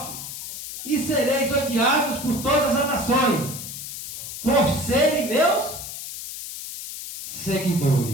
e sereis odiados por todas as nações, por serem meus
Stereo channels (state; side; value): noise; left; hiss, 9 dB below the sound